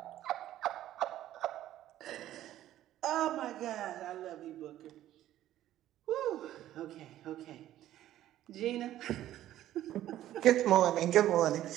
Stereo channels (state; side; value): quieter; left; 13.1 dB